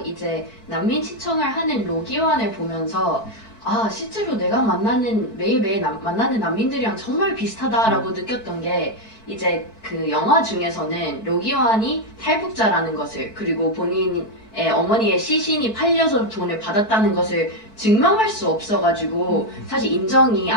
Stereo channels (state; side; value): late; right; 4.5 ms